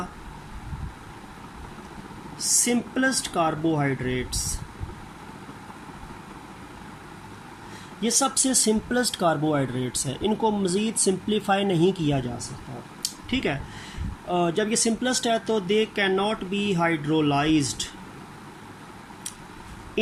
simplest carbohydrates। ये सबसे सिंपलेस्ट कार्बोहाइड्रेट्स हैं, इनको मज़ीद सिंप्लीफाई नहीं किया जा सकता। ठीक है, जब ये सिंपलेस्ट है तो they can not be hydrolysed,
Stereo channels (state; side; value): identical; both; correlation 1.00